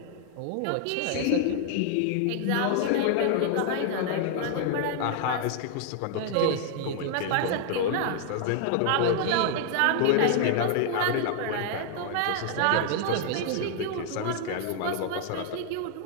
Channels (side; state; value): both; different; correlation 0.00